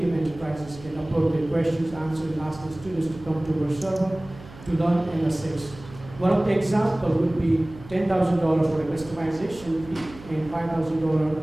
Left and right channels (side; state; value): right; noise; hum, 18 dB below the sound